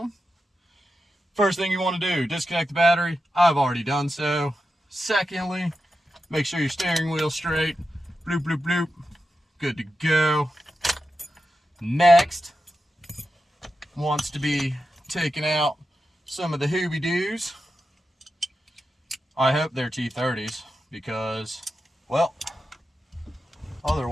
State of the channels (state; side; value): normal; both; correlation 0.90